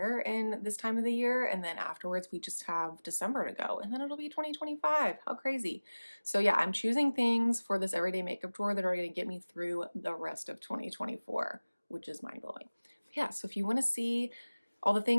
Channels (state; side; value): inverted; both; correlation -1.00